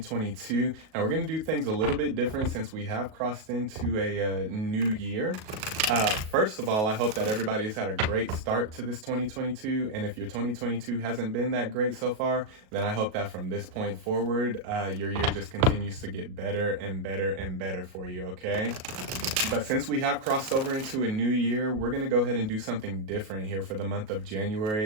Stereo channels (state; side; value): late; left; 37 ms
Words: Now, we're going to do things a little bit different since we have crossed into a new year. First of all, I hope that everybody has had a great start to this 2022. And if your 2022 hasn't been that great so far, then I hope that from this point forward, your year just continues to get better and better and better for you, okay? But since we have crossed over into a new year, we're going to go ahead and do something different here for the month of